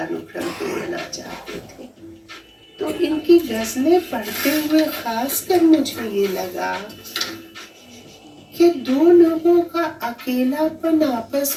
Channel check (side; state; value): both; identical; correlation 1.00